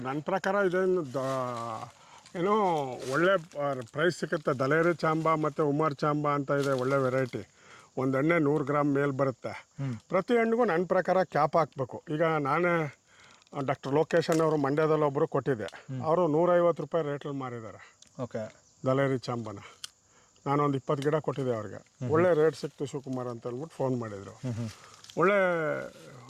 ನನ್ನ ಪ್ರಕಾರ ಇದೇನು ಏನೋ ಒಳ್ಳೆ ಪ್ರೈಸ್ ಸಿಗುತ್ತೆ. ದಲೇರಿ ಚಾಂಬಾ ಮತ್ತು ಉಮರ್ ಚಾಂಬಾ ಅಂತ ಇದೆ, ಒಳ್ಳೆ ವೆರೈಟಿ. ಒಂದು ಎಣ್ಣೆ 100 ಗ್ರಾಮ್ ಮೇಲೆ ಬರುತ್ತೆ. ಪ್ರತಿ ಹಣ್ಣಿಗೂ ನನ್ನ ಪ್ರಕಾರ ಕ್ಯಾಪ್ ಹಾಕಬೇಕು. ಈಗ ನಾನೇ ಡಾಕ್ಟರ್ ಲೋಕೇಶನ್ ಅವರು ಮಂಡ್ಯದಲ್ಲಿ ಒಬ್ಬರು ಕೊಟ್ಟಿದ್ದೆ, ಅವರು 150 ರೂಪಾಯಿ ರೇಟಲ್ಲಿ ಮಾರಿದ್ದಾರೆ. ಓಕೆ, ದಲೇರಿ ಚಾಂಬಾನ ನಾನೊಂದು 20 ಗಿಡ ಕೊಟ್ಟಿದ್ದೆ ಅವ್ರಿಗೆ. ಒಳ್ಳೆ ರೇಟ್ ಸಿಕ್ತು ಶಿವಕುಮಾರ್ ಅಂತ ಅಂದ್ಬಿಟ್ಟು ಫೋನ್ ಮಾಡಿದರು. ಒಳ್ಳೆ,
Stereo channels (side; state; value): both; identical; correlation 1.00